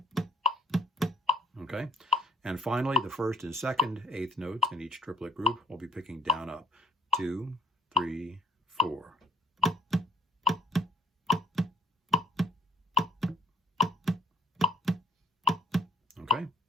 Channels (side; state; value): both; normal; correlation 0.59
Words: Okay, and finally, the first and second eighth notes in each triplet group, we'll be picking down, up. 2, 3, 4. Okay,